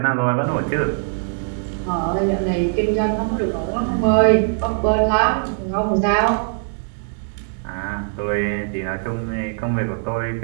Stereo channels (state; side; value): silent; left; digital silence